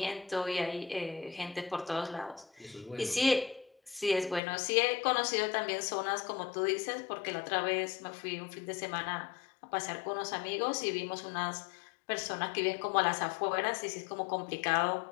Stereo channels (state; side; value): drops out; right; at 4.4 s